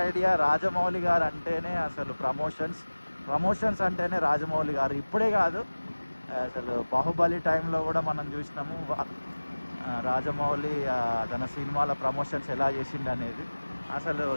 ఐడియా. రాజమౌళి గారు అంటేనే అసలు ప్రమోషన్స్ అంటేనే రాజమౌళి గారు. ఇప్పుడే కాదు, అసలు బాహుబలి టైంలో కూడా మనం చూసినాము రాజమౌళి తన సినిమాల ప్రమోషన్స్ ఎలా చేసిండు అనేది. అసలు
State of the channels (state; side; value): inverted; both; correlation -1.00